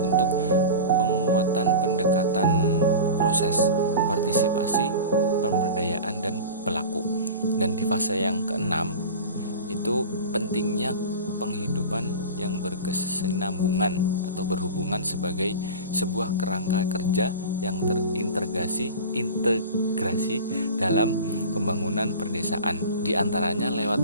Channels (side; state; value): both; inverted; correlation -0.32